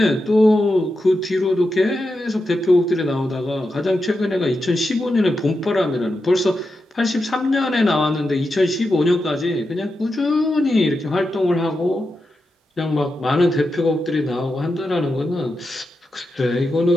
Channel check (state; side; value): normal; both; correlation 0.88